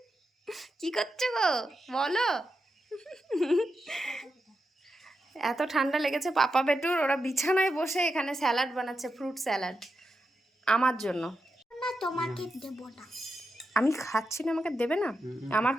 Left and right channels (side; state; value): both; normal; correlation 0.87